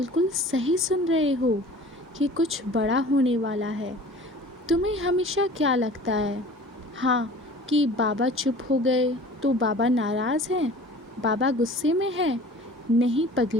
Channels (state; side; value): normal; both; correlation 0.44